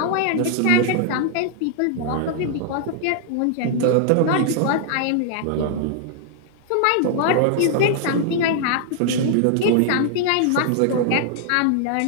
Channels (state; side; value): different; both; correlation -0.01